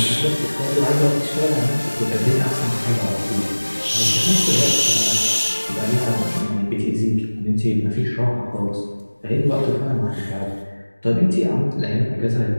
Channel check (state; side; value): inverted; both; correlation -1.00